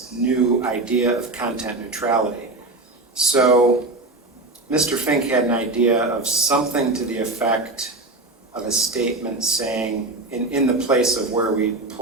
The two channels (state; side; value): quieter; left; 3.0 dB